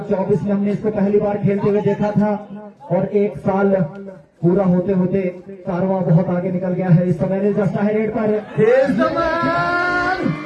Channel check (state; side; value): identical; both; correlation 1.00